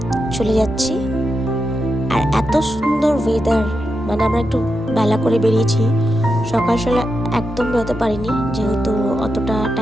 চলে যাচ্ছি, আর এত সুন্দর ওয়েদার, মানে আমরা একটু বেলা করে বেরিয়েছি। সকাল সকাল একদম বেরোতে পারিনি, যেহেতু অতটা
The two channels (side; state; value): both; normal; correlation 0.87